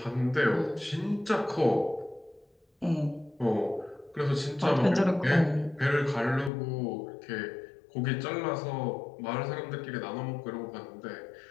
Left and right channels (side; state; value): right; drops out; at 6.5 s